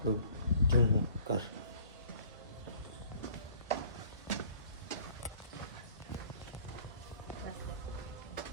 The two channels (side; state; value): both; inverted; correlation -0.53